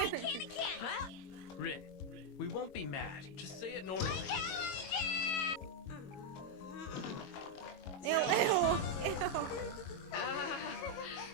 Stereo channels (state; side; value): late; right; 22 ms